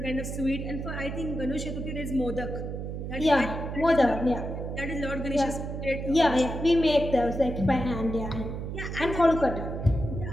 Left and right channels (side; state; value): right; noise; hum, 6 dB below the sound